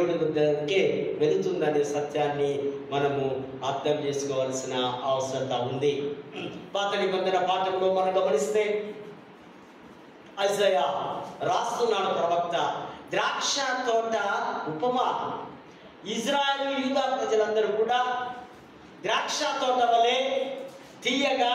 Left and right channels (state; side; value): identical; both; correlation 1.00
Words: దగ్గరికి వెళుతుందనే సత్యాన్ని మనము అర్థం చేసుకోవాల్సిన అవసరత ఉంది. పాత నిబంధన పాఠంలో మనం గమనిస్తే ఐజయా రాస్తున్నాడు ప్రవక్త, ద్రాక్ష తోట ఉపమా. ఇజ్రాయేలు యూదా ప్రజలందరూ కూడా ద్రాక్ష తోట వలె తీయగా,